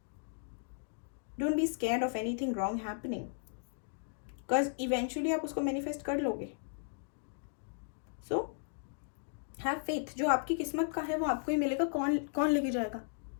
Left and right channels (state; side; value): silent; right; digital silence